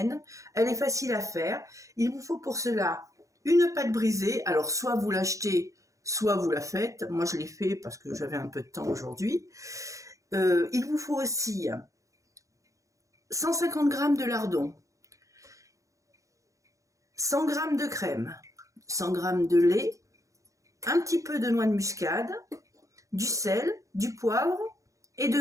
Elle est facile à faire. Il vous faut pour cela une pâte brisée. Alors, soit vous l'achetez, soit vous la faites. Moi, je l'ai fait parce que j'avais un peu de temps aujourd'hui. Il vous faut aussi 150 g de lardon, 100 g de crème, 100 g de lait, un petit peu de noix de muscade, du sel, du poivre et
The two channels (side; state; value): left; late; 0.15 ms